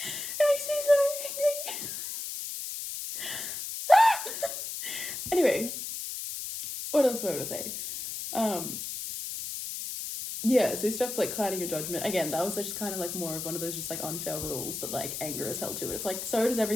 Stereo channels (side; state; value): left; noise; hiss, 6 dB below the sound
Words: makes me so angry. Anyway, what else was I going to say? Yeah, so stuff like clouding your judgment. Again, that was just kind of like more of one of those just like unfair rules that like anger is held to. And it's like, so does